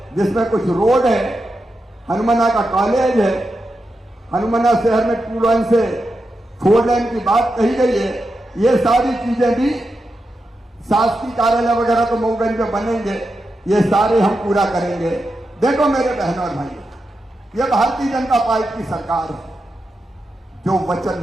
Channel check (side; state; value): both; normal; correlation 0.88